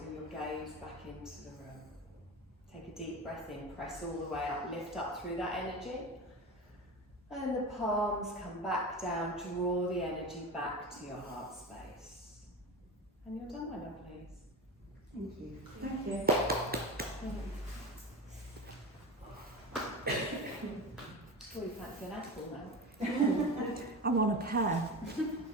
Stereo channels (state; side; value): normal; both; correlation 0.27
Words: your gaze back into the room. Take a deep breath in, press all the way up, lift up through that energy. And the palms come back down, draw the energy back to your heart space. And you're done, my lovelies. Thank you. Thank you. Oh, you fancy an apple now? I want a pear.